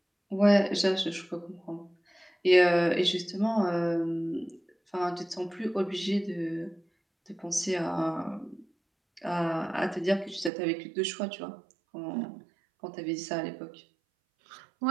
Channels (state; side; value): drops out; left; at 10.5 s